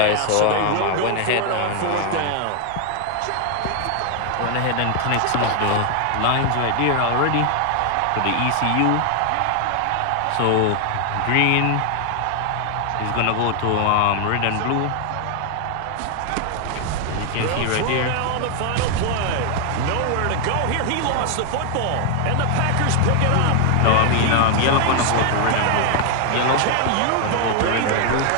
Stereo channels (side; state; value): both; different; correlation 0.00